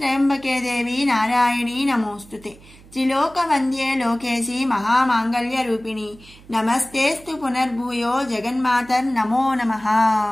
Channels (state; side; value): noise; right; hum, 23 dB below the sound